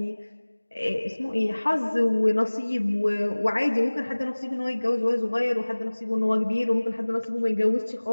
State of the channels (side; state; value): both; inverted; correlation -1.00